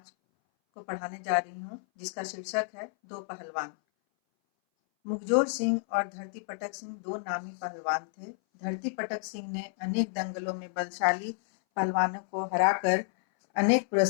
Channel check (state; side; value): silent; right; 58 dB below the other